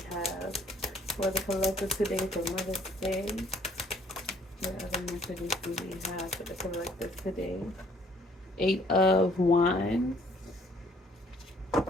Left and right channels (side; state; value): both; normal; correlation 0.61